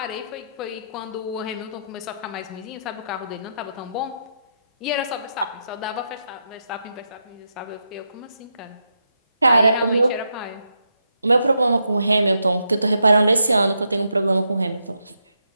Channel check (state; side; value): inverted; both; correlation -0.82